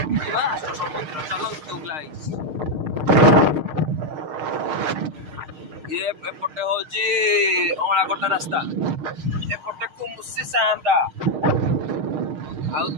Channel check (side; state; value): left; late; 6.5 ms